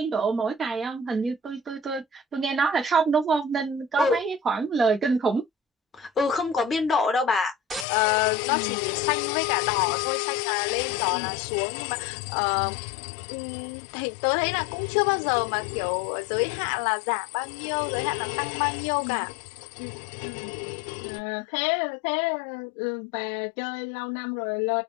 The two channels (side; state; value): right; drops out; at 7.9 s